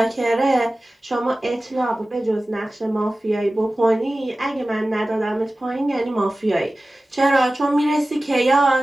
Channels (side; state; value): both; normal; correlation 0.96